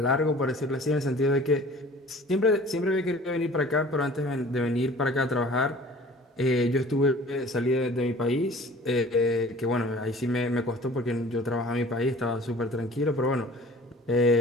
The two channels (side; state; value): both; normal; correlation 0.47